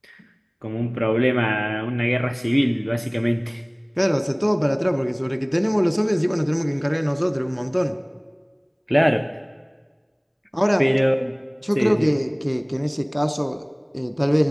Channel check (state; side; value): identical; both; correlation 1.00